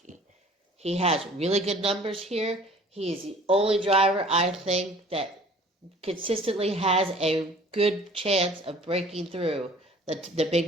He has really good numbers here. He is the only driver, I think, that consistently has a good chance of breaking through the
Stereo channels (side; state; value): both; normal; correlation 0.50